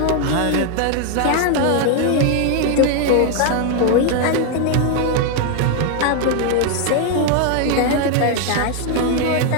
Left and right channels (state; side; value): different; both; correlation 0.00